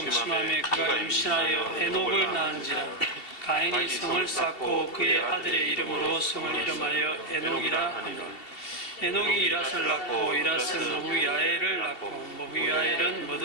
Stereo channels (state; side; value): late; right; 2.7 ms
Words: 그가 임신하여 에녹을 낳은지라. 가인이 성을 쌓고 그의 아들의 이름으로 성을 이름하여 에녹이라 하니라. 에녹이 이랏을 낳고 이랏은 머후야엘을 낳고 머후야엘은